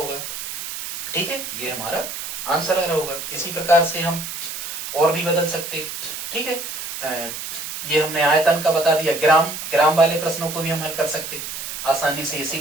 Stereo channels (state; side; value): noise; right; hiss, 7 dB below the sound